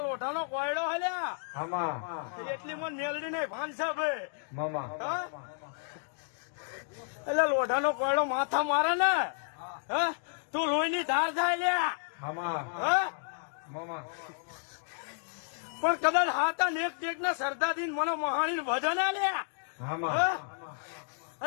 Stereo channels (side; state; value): right; silent; digital silence